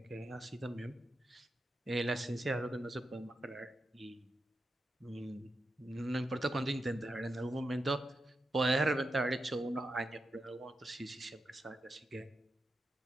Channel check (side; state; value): both; normal; correlation 0.88